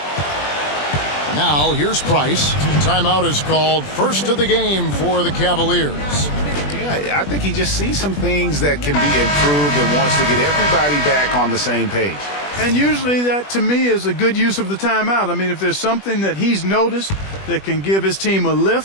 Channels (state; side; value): late; right; 20 ms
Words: Now here's Price. Timeout is called. First of the game for the Cavaliers. Yeah, I think he just sees some things that can be improved and wants to get everybody back on the same page. And usually that, to me, is a good use of the timeout. I mean, if there's something that he's noticed that can give his team a